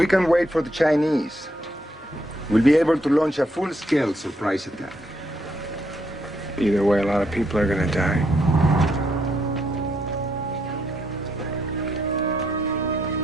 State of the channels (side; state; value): both; normal; correlation 0.75